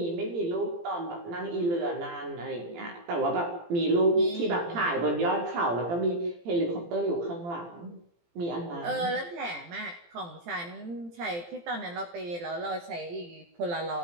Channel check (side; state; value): left; late; 17 ms